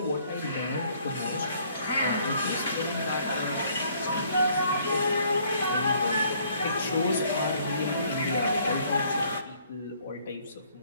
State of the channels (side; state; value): both; inverted; correlation -0.63